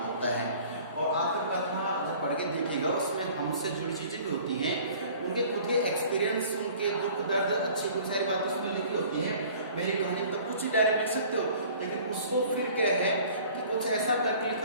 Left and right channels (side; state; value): both; inverted; correlation -0.49